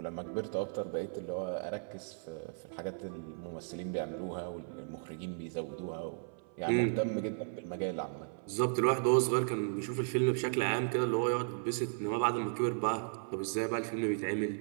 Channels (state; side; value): silent; left; 54 dB below the other